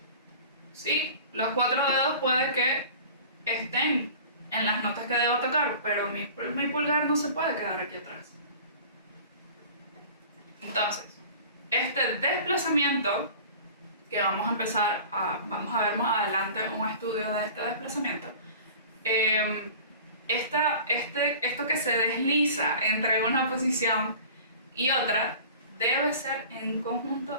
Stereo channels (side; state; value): both; inverted; correlation -0.41